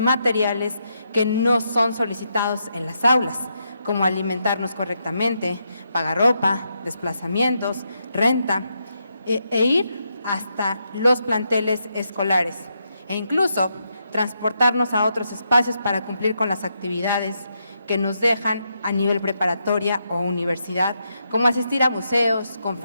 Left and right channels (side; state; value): both; inverted; correlation -0.81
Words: que no son solicitados en las aulas, como alimentarnos correctamente, pagar ropa, desplazamientos, renta e ir hasta los planteles escolares e incluso transportarnos a otros espacios para cumplir con las actividades que nos dejan a nivel preparatoria o universidad, como asistir a museos,